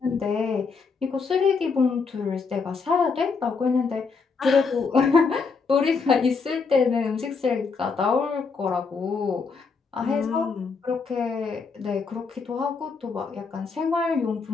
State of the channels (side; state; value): right; quieter; 4.9 dB